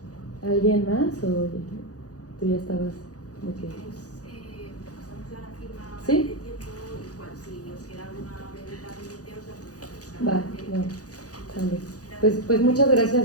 ¿Alguien más o tú ya estabas de qué? Pasamos ya la firma ¿Sí? de tiempo, igual si os queda alguna pregunta pendiente os la podéis. Bueno, vale. Pues muchas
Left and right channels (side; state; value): right; late; 0.67 ms